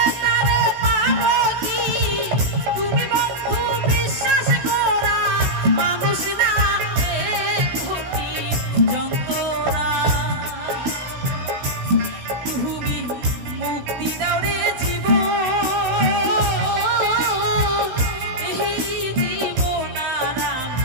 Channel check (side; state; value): left; late; 16 ms